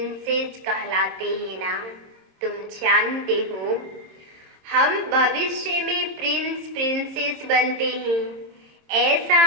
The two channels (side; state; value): left; late; 26 ms